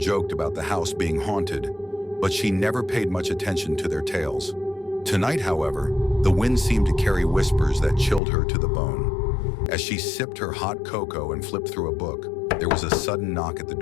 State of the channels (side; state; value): right; drops out; at 8.2 s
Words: about the house being haunted, but she never paid much attention to their tales. Tonight, however, the wind seemed to carry whispers that chilled her to the bone. As she sipped her hot cocoa and flipped through a book, there was a sudden knock at the